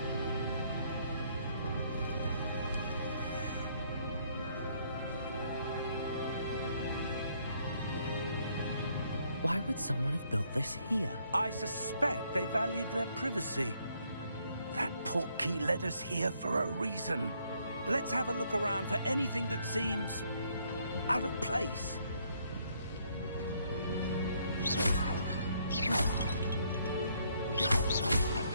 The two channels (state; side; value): inverted; both; correlation -0.70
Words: Why would someone have built this here? I suspect they valued their privacy. That portkey led us here for a reason. Let's have a look around for anything that seems out of place.